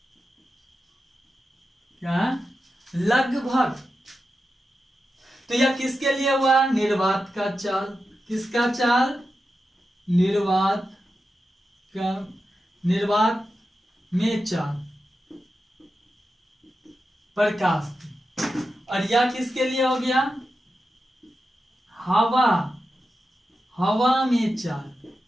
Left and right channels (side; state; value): both; normal; correlation 0.90